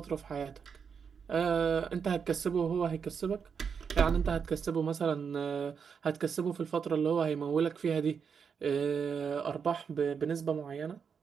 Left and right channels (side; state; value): left; quieter; 6.5 dB